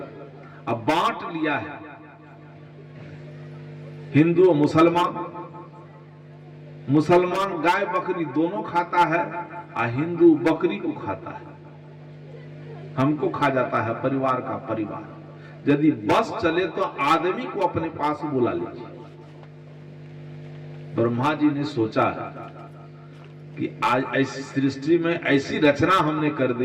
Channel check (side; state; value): both; identical; correlation 1.00